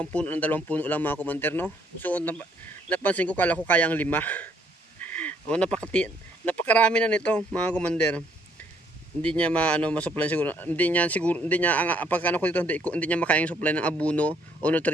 puno lang mga commander, no. So napansin ko, kala ko kaya ang 5. Napakarami na nito mga commander. Hindi niya ma-supply siguro. Hindi niya pagkano ko dito, hindi niya makayang supply ng abono o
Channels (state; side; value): normal; both; correlation 0.66